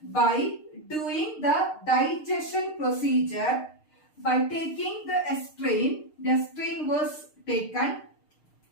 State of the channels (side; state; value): right; late; 6.5 ms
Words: by doing the digestion procedure. By taking the strain was taken,